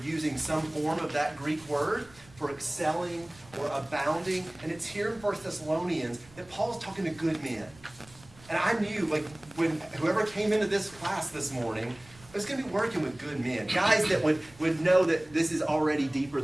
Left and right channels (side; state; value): right; noise; rumble, 24 dB below the sound